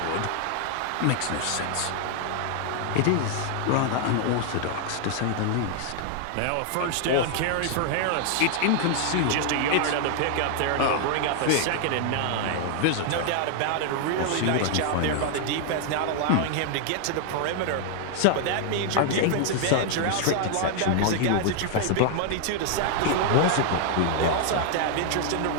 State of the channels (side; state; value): both; different; correlation 0.00